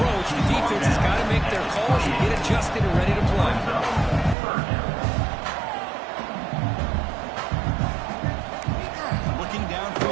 The defense has got to make their calls and get adjusted and ready to play. Looking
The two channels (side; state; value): left; drops out; at 4.4 s